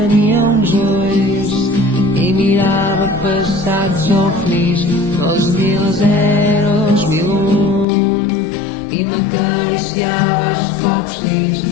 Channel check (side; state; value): right; drops out; at 7.9 s